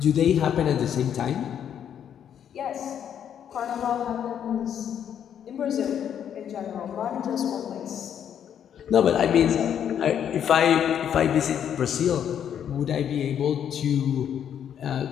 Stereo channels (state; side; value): quieter; right; 9.1 dB